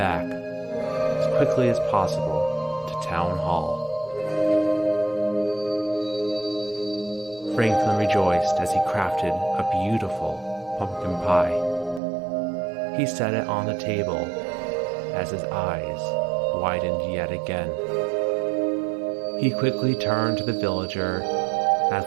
as quickly as possible to town hall. Franklin rejoiced as he crafted a beautiful pumpkin pie. He set it on the table as his eyes widened yet again. He quickly turned to the villager as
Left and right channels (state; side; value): drops out; left; at 12.0 s